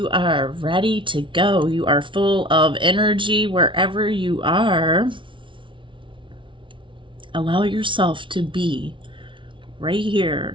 are ready to go. You are full of energy wherever you are. Allow yourself to be right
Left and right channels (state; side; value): late; left; 0.24 ms